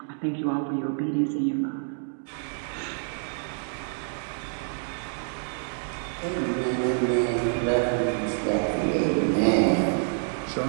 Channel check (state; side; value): silent; left; 60 dB below the other